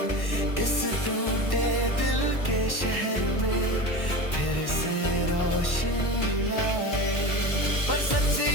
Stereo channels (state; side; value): late; right; 1.1 ms